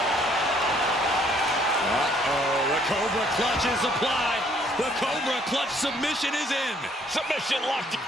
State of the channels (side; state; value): both; normal; correlation 0.64